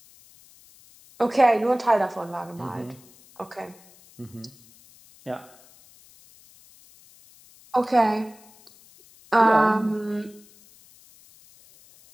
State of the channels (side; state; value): left; noise; hiss, 26 dB below the sound